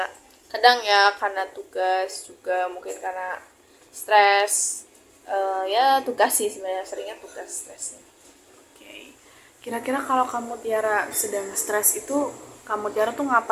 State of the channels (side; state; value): both; identical; correlation 1.00